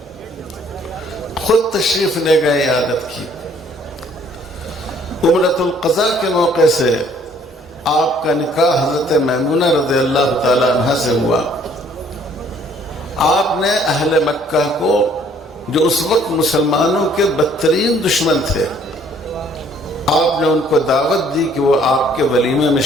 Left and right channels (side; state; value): both; normal; correlation 0.60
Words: خود تشریف لے گئے، عیادت کی۔ عمرۃ القضاء کے موقع سے آپ کا نکاح حضرت میمونہ رضی اللہ تعالی عنہ سے ہوا۔ آپ نے اہل مکہ کو، جو اس وقت مسلمانوں کے بدترین دشمن تھے، آپ نے ان کو دعوت دی کہ وہ آپ کے ولیمے میں